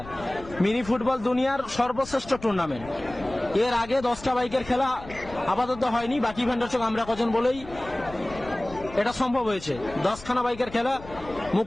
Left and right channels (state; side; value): noise; left; rumble, 17 dB below the sound